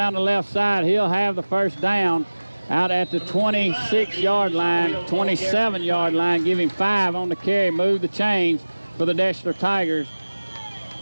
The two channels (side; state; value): both; inverted; correlation -1.00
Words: the left side. He'll have the 1st down out at the 26-yard line, 27-yard line, giving 5 on the carry. Move the chains for the Deshler Tigers.